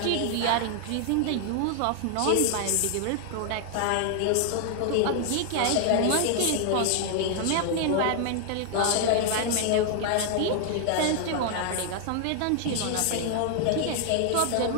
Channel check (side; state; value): both; different; correlation 0.00